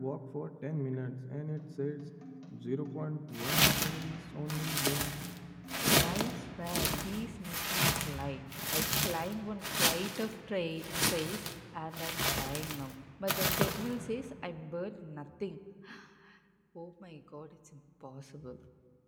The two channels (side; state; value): both; identical; correlation 1.00